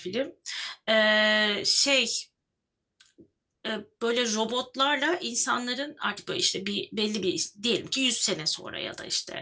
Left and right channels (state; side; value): identical; both; correlation 1.00